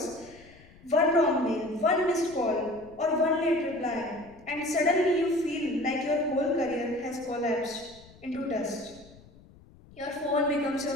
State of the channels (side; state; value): left; noise; rumble, 24 dB below the sound